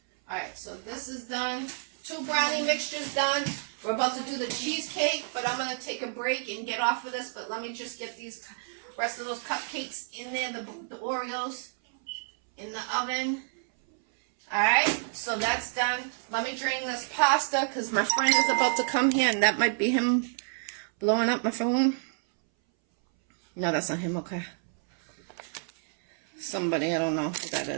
Alright, so this is done. 2 brownie mixtures done. We're about to do the cheesecake, but I'm going to take a break and get off of this. But let me just get these rest of those cupcakes in there, the Oreos, in the oven. Alright, so that's done. Let me drain this pasta because my friend is about to come here, and that might be him blowing up my phone. No, that's not him, okay. Somebody, I don't know who that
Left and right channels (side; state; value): left; silent; 58 dB below the other